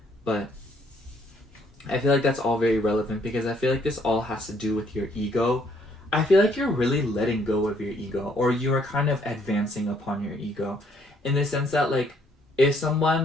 But I feel like that's all very relevant because I feel like this all has to do with your ego. I feel like you're really letting go of your ego, or you are kind of advancing upon your ego in the sense that, like, if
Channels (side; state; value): both; normal; correlation 0.67